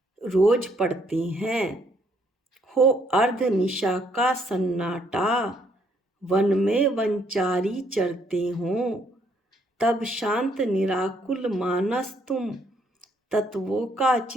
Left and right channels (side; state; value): both; normal; correlation 0.69